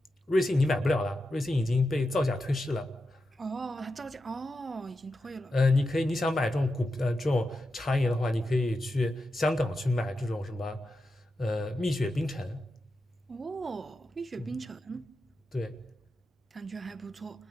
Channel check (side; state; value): both; normal; correlation 0.89